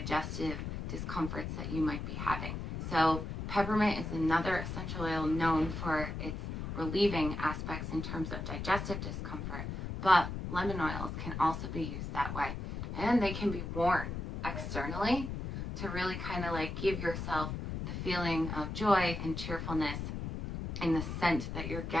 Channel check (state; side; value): noise; left; rumble, 5 dB below the sound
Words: discomforts that you might be having. So peppermint is another essential oil known for its relieving aspects in terms of digestive discomfort, but lemon oils can also be used that way. And they can be worn externally to really kind of like give yourself the feeling of joy and cheerfulness in the scent that you're